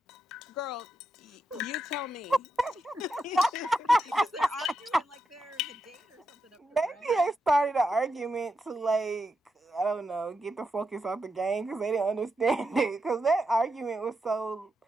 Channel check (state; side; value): normal; both; correlation 0.85